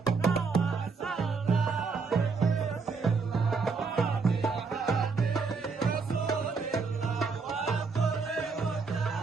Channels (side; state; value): left; quieter; 4.7 dB